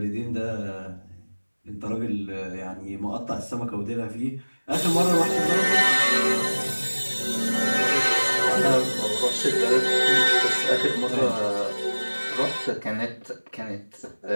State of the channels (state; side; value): inverted; both; correlation -1.00